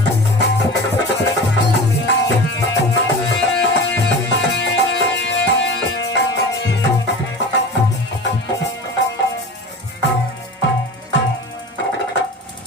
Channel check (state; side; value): normal; both; correlation 0.33